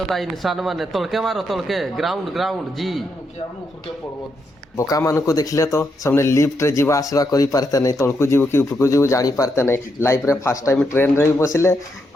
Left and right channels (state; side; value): normal; both; correlation 0.81